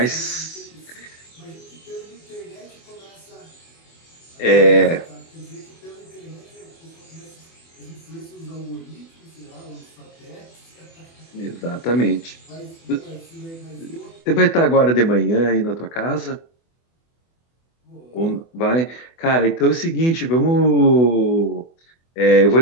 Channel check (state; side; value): late; right; 24 ms